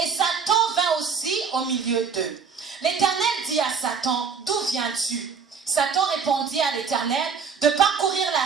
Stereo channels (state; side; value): quieter; left; 6.0 dB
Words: Et Satan vint aussi au milieu d'eux. L'Éternel dit à Satan, d'où viens-tu? Satan répondit à l'Éternel, de parcourir